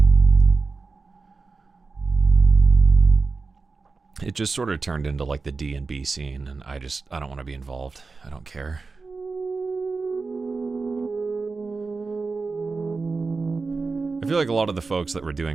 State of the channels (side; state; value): left; quieter; 4.2 dB